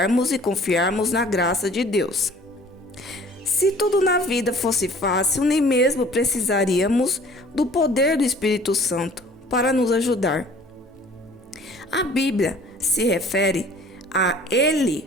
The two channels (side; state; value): both; normal; correlation 0.51